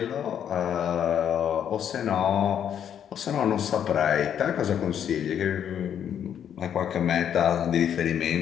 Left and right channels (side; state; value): right; quieter; 9.1 dB